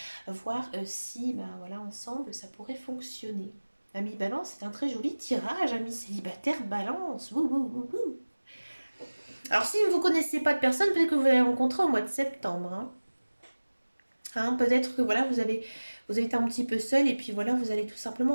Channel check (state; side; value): inverted; both; correlation -1.00